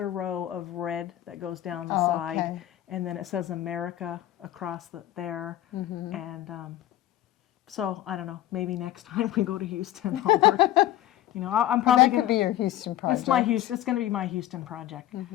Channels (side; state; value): right; quieter; 13.4 dB